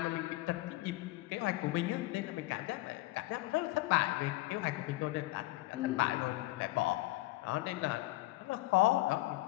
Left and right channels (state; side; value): quieter; right; 19.3 dB